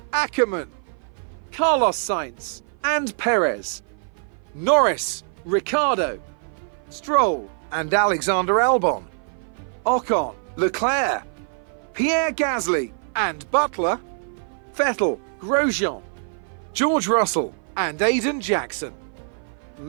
Ackermann, Carlos Sainz, and Perez, Norris, Ricciardo, Stroll, and Alexander Albon, Ocon, Leclerc, Pierre Gasly, and Butler, Vettel, Grosjean, George Russell, and Aiden Jackson,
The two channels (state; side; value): silent; left; 57 dB below the other